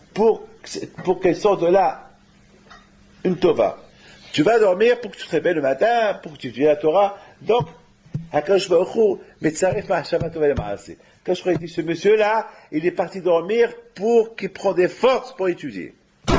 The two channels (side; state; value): both; identical; correlation 1.00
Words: pour qu'elle sorte de là une tova. Tu vas dormir pour que tu te réveilles le matin, pour que tu étudies la Torah. Donc, HaKadosh Baruch Hu, Metzaref Ma'ashama Tova Le'Ma'aseh. Quand je crois que ce monsieur-là, il est parti dormir pour qu'il prenne des forces pour étudier.